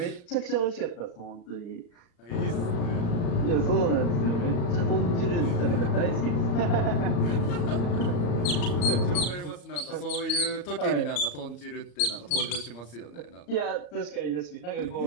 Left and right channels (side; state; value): right; late; 35 ms